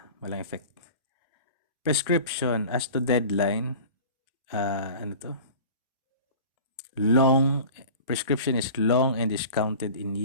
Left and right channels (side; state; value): both; inverted; correlation -0.39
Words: Walang effect. Prescription as to deadline, prescription is long and is counted in